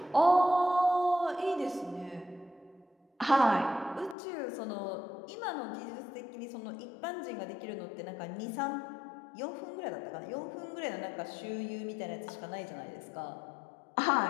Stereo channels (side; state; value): right; drops out; at 4.2 s